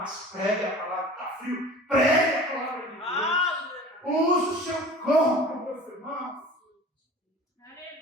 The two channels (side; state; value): both; normal; correlation 0.41